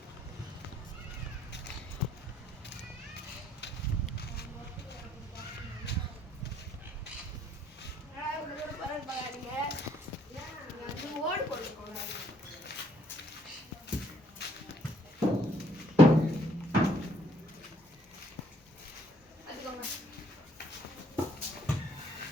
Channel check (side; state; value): both; normal; correlation 0.65